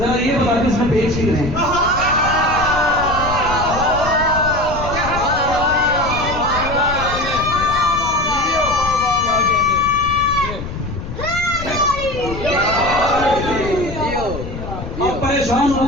یہ بتا دیں اس میں پیش کی رہیں. پریشان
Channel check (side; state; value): left; noise; rumble, 8 dB below the sound